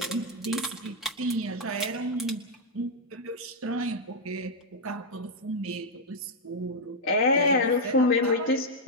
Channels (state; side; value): normal; both; correlation -0.02